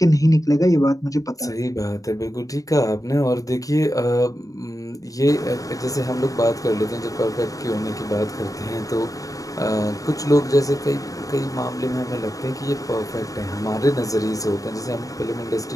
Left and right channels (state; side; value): late; right; 0.17 ms